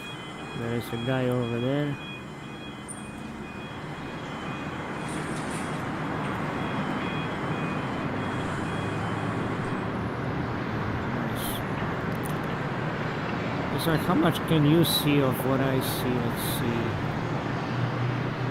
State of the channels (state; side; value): identical; both; correlation 1.00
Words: There is a guy over there. Nice. It's like, how much can you see of what I see? Let's see.